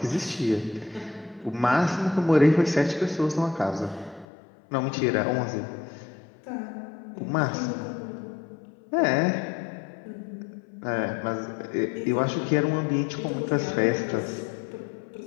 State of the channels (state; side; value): drops out; right; at 4.2 s